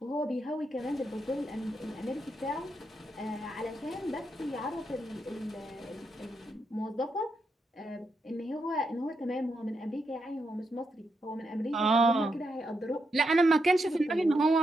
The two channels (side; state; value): both; normal; correlation 0.83